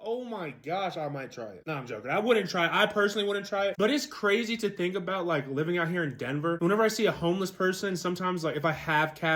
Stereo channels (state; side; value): identical; both; correlation 1.00